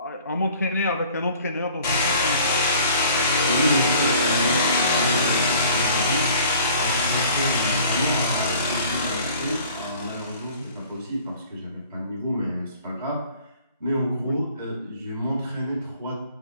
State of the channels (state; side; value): inverted; both; correlation -0.50